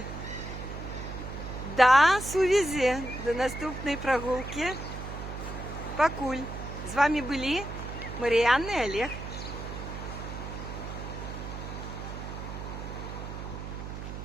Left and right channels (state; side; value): noise; right; hum, 8 dB below the sound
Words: до сувязі, до наступної прогулки. Пакуль. З вами були Мар'яна і Олег.